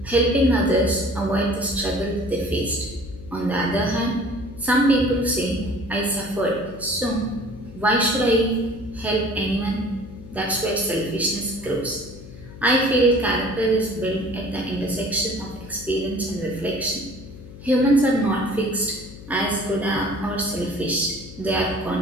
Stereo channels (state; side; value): noise; left; hum, 16 dB below the sound